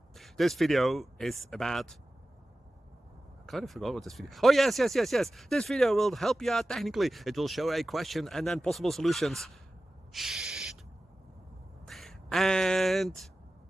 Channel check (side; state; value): both; normal; correlation 0.95